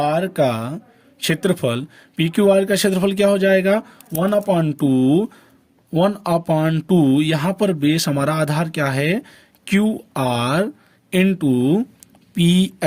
का क्षेत्रफल, PQR का क्षेत्रफल क्या हो जाएगा 1/2 यहाँ पर बेस हमारा आधार क्या है QR इंटू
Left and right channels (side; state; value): both; identical; correlation 1.00